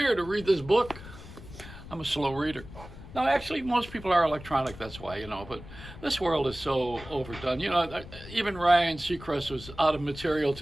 to read this book. I'm a slow reader. No, actually, most people are electronic. That's why. But this world is so overdone. Even Ryan Seacrest was out of material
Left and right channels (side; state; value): left; noise; rumble, 15 dB below the sound